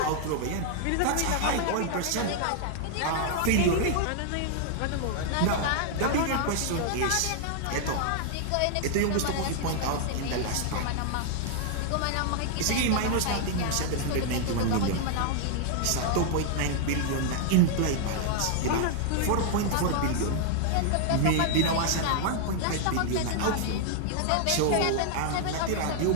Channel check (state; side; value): different; both; correlation -0.01